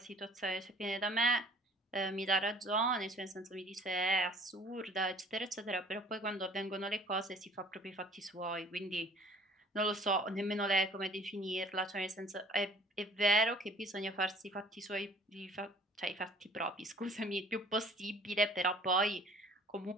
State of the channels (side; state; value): both; normal; correlation 0.52